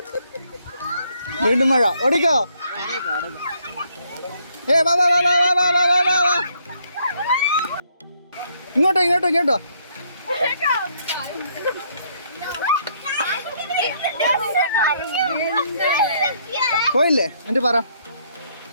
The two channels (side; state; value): both; inverted; correlation -0.70